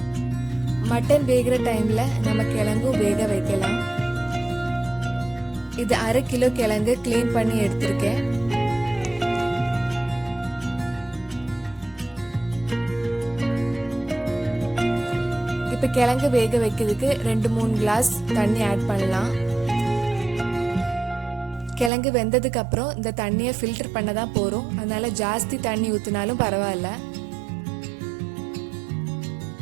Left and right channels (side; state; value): left; drops out; at 21.9 s